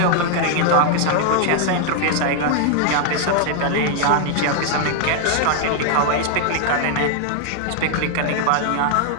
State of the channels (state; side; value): different; both; correlation 0.00